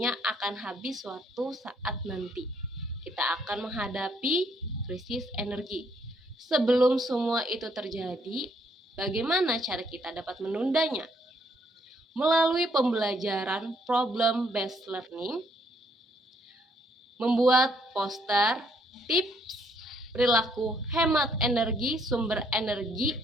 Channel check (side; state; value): both; normal; correlation 0.69